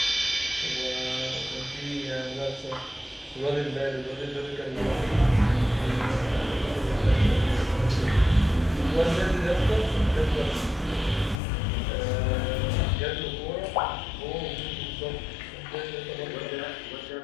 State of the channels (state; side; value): drops out; right; at 11.4 s